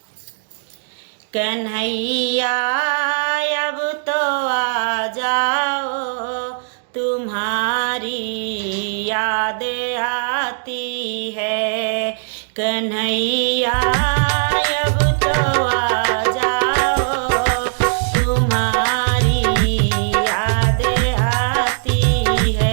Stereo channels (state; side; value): silent; left; digital silence